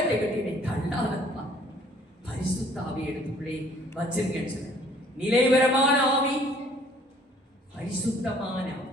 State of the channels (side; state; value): both; normal; correlation 0.58